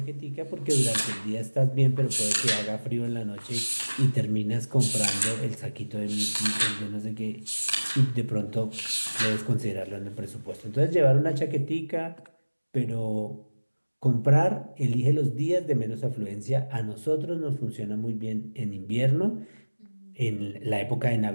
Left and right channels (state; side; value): inverted; both; correlation -1.00